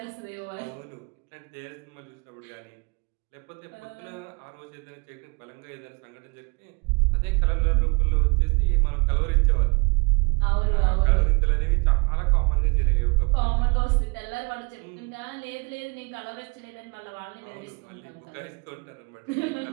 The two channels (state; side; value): quieter; left; 31.4 dB